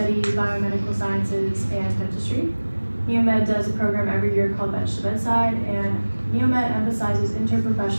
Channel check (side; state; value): both; inverted; correlation -1.00